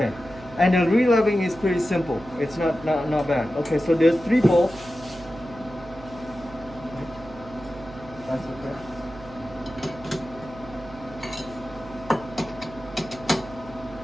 And the re-leveling is pretty simple. It's not bad. Okay, so there's 3 bolts. That's okay.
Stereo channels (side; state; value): right; noise; hum, 17 dB below the sound